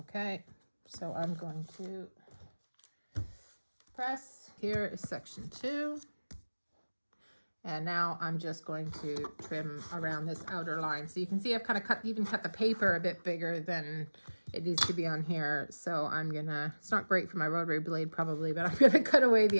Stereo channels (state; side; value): inverted; both; correlation -1.00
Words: So I'm going to press. Here is section 2. And now I'm just going to trim around this outer line. So you can see I've kind of even cut the paper a bit bigger than it needs to be on here. So I'm gonna, it's not great for my rotary blade probably, but I'm gonna cut away